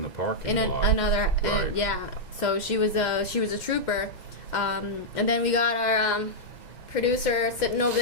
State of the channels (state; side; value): late; right; 2.1 ms